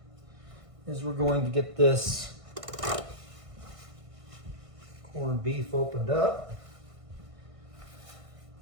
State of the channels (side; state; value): left; late; 1.6 ms